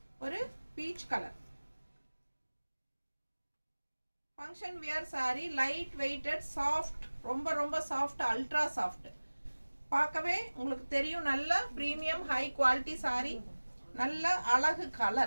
ஒரு peach colour. Function wear sari, light weighted, soft, ரொம்ப ரொம்ப சாஃப்ட், அல்ட்ரா சாஃப்ட். பார்க்கவே உங்களுக்கு தெரியும் நல்ல ப்ரீமியம் ஹை குவாலிட்டி சாரி. நல்ல அழகு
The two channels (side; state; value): both; inverted; correlation -1.00